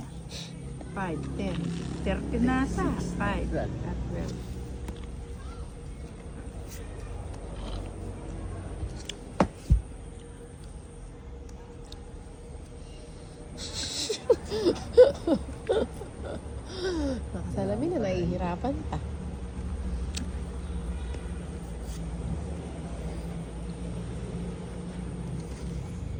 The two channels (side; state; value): both; identical; correlation 1.00